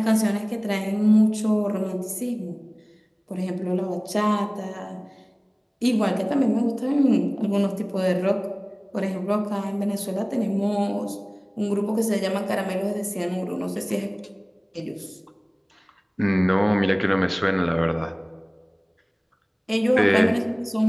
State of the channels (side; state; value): both; identical; correlation 1.00